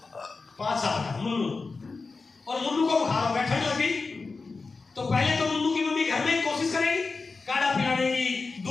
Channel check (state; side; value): quieter; right; 4.1 dB